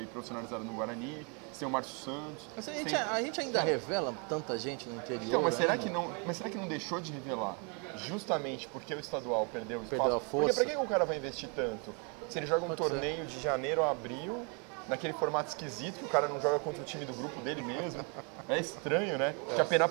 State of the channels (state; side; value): quieter; left; 35.7 dB